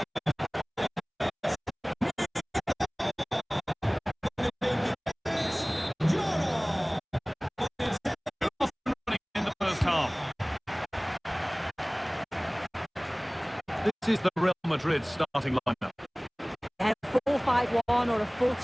This is the Real Madrid starting lineup. Yeah, 4-5-1 or a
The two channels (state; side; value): identical; both; correlation 1.00